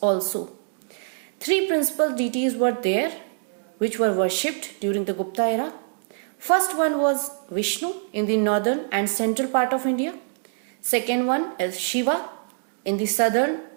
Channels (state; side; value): silent; left; digital silence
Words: also. Three principal deities were there which were worshipped during the Gupta era. First one was Vishnu in the northern and central part of India. Second one is Shiva in the southern